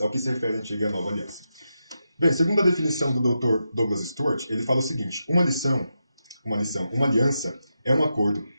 ao que se refere a antiga e a nova aliança. Bem, segundo a definição do Dr. Douglas Stewart, ele fala o seguinte: uma aliança é um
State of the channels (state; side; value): inverted; both; correlation -0.87